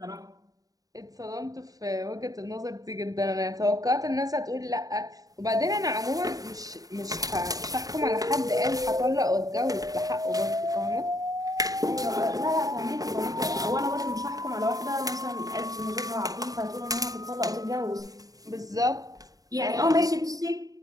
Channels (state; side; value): late; left; 0.18 ms